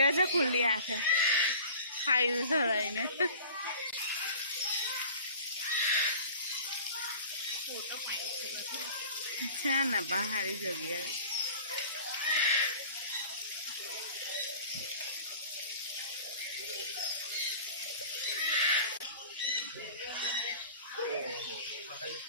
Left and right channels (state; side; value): inverted; both; correlation -0.43